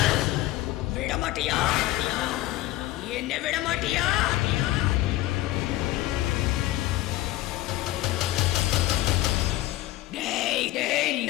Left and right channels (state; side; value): quieter; right; 16.1 dB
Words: విడమటియా, என்ன விடமாட்டியா?